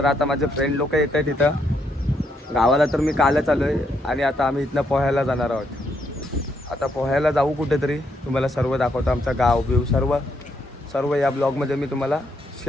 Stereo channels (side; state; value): both; normal; correlation 0.76